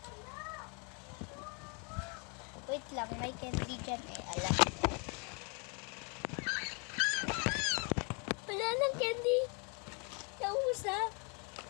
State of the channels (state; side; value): quieter; right; 35.0 dB